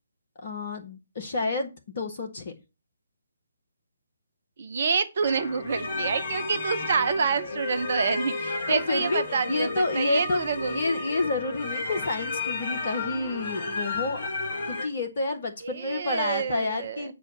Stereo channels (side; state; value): both; inverted; correlation -0.73